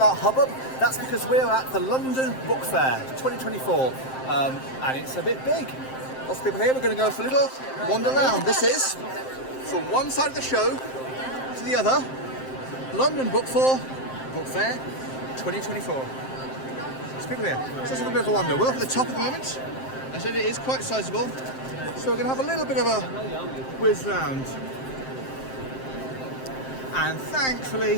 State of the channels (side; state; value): right; late; 7.6 ms